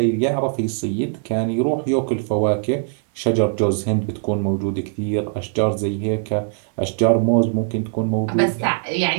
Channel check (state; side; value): silent; left; 60 dB below the other